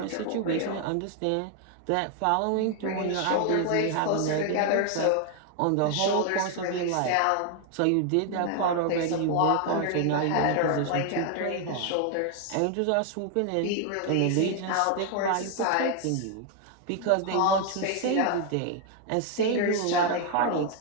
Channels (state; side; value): different; both; correlation 0.00